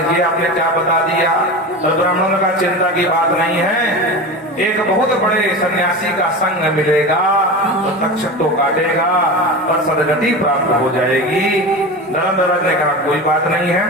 ये आपने क्या बता दिया? तो ब्राह्मणों का चिंता की बात नहीं है, एक बहुत बड़े सन्यासी का संग मिलेगा तो तक्षक तो काटेगा पर सदगति प्राप्त हो जाएगी। धर्मराज ने कहा कोई बात नहीं है।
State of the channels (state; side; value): normal; both; correlation 0.27